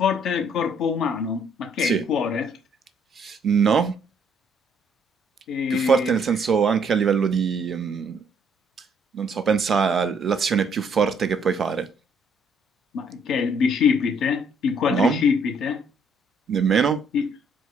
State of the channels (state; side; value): normal; both; correlation 0.66